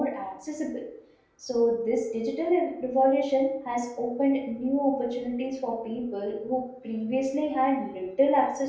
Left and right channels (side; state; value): both; identical; correlation 1.00